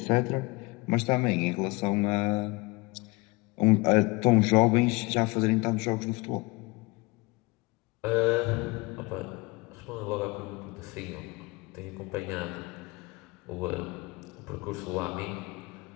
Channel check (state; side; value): quieter; right; 24.7 dB